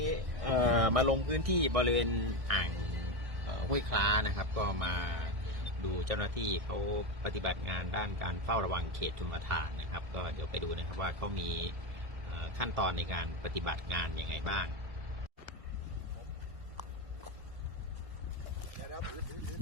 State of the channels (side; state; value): left; late; 1.7 ms